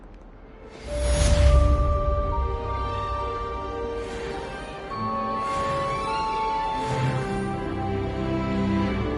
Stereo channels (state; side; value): identical; both; correlation 1.00